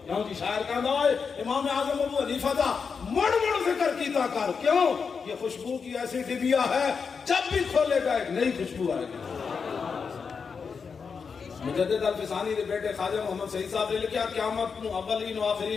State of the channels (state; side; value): quieter; right; 5.7 dB